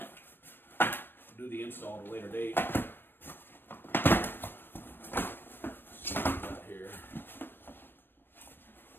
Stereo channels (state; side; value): late; right; 0.097 ms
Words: do the install at a later date. Let's see what we got here.